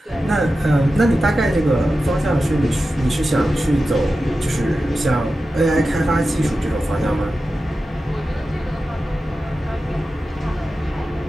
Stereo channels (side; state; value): both; normal; correlation 0.93